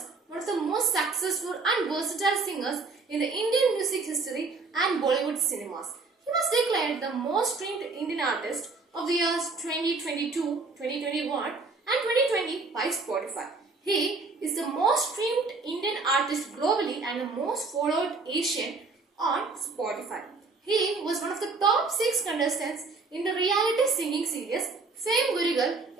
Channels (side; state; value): left; quieter; 4.0 dB